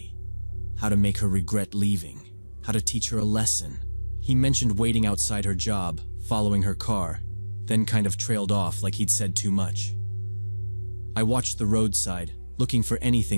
how to make her regret leaving, how to teach her a lesson. He mentioned waiting outside her job, following her car, then kind of trailed off like he'd said too much. I watched the roadside, looking for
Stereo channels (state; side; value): inverted; both; correlation -1.00